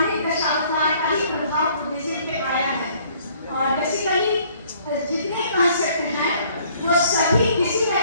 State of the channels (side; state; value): both; inverted; correlation -0.60